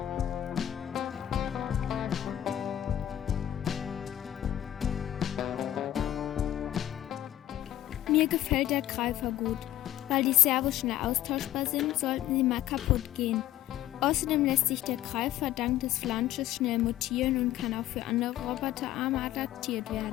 Mir gefällt der Greifer gut. Weil die Servos schnell austauschbar sind, sollten sie mal kaputt gehen. Außerdem lässt sich der Greifer dank des Flansches schnell montieren und kann auch für andere Roboterarme adaptiert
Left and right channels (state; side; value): quieter; right; 13.0 dB